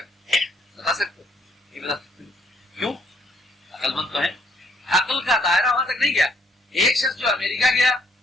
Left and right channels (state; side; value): normal; both; correlation 0.66